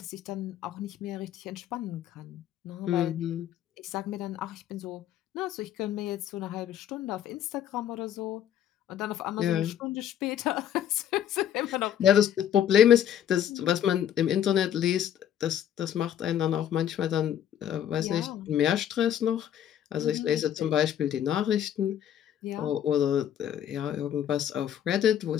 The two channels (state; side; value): quieter; right; 10.3 dB